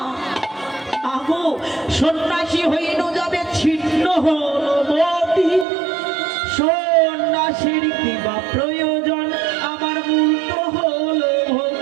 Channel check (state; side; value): drops out; left; at 5.7 s